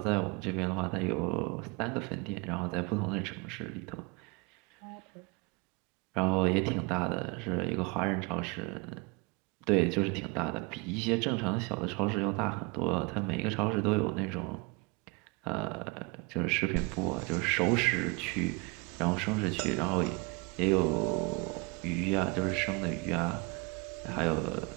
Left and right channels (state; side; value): quieter; left; 28.4 dB